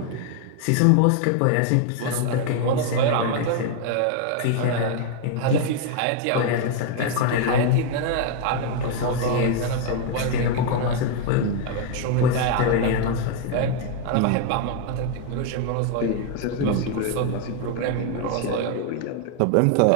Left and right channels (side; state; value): both; different; correlation 0.00